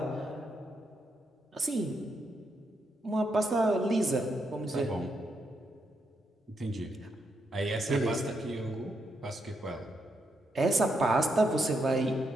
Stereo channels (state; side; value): normal; both; correlation 0.80